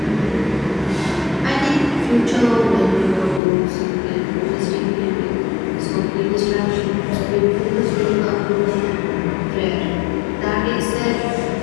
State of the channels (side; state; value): right; drops out; at 3.4 s